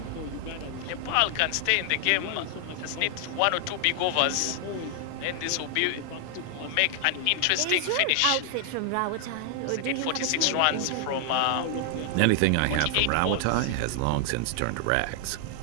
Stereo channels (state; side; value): different; both; correlation 0.00